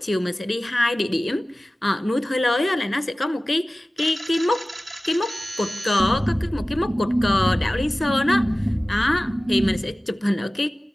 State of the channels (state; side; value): normal; both; correlation 0.97